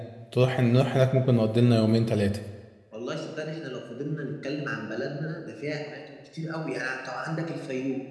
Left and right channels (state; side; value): identical; both; correlation 1.00